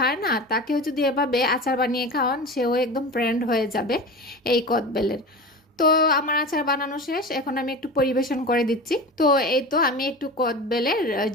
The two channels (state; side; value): normal; both; correlation 0.31